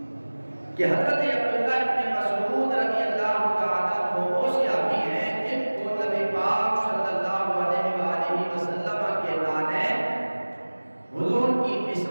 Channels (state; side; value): inverted; both; correlation -1.00